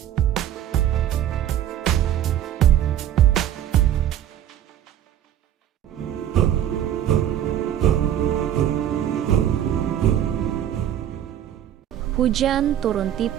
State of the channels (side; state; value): left; quieter; 10.9 dB